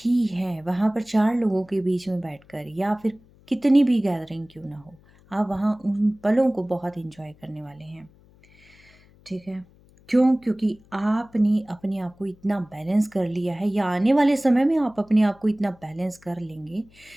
हैं, वहाँ पर 4 लोगों के बीच में बैठकर, या फिर कितनी भी गैदरिंग क्यों ना हो, आप वहाँ उन पलों को बहुत एन्जॉय करने वाले हैं, ठीक है। क्यों? क्योंकि आपने अपने आप को इतना बैलेंस कर लिया है, या आने वाले समय में आप अपने आप को इतना बैलेंस कर लेंगे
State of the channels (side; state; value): left; noise; hum, 28 dB below the sound